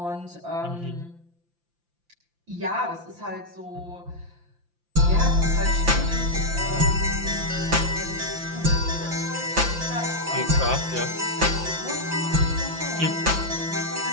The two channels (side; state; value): left; late; 5.8 ms